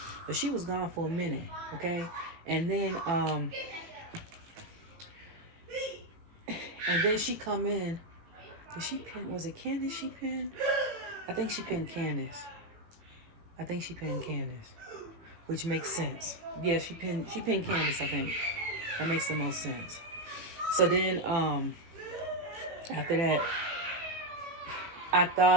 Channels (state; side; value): late; left; 18 ms